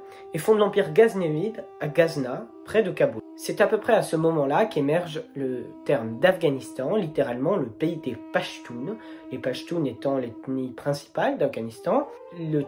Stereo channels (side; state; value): both; identical; correlation 1.00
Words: et fonde l'empire ghaznévide à Ghazna, près de Kaboul. C'est à peu près à ce moment-là qu'émerge le terme d'Afghanistan, littéralement le pays des Pashtuns, les Pashtuns étant l'ethnie principale d'Afghanistan, le